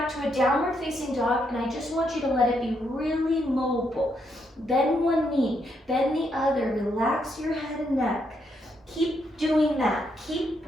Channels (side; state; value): both; normal; correlation 0.77